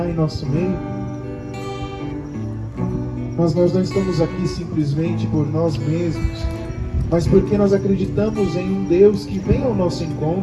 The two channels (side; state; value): both; identical; correlation 1.00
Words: em nosso meio? Mas nós não estamos aqui simplesmente por nós mesmos, mas porque nós acreditamos em um Deus que vem ao nosso